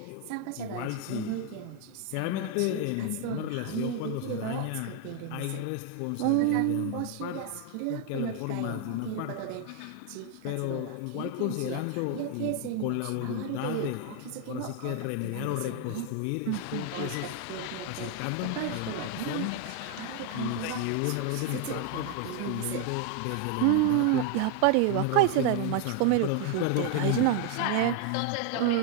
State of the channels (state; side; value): different; both; correlation 0.01